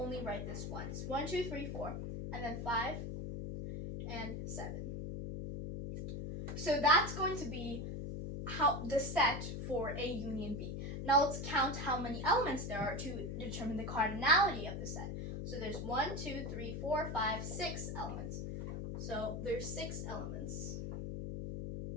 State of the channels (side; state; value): left; noise; hum, 5 dB below the sound